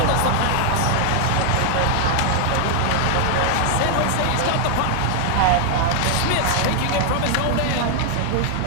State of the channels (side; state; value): both; different; correlation 0.00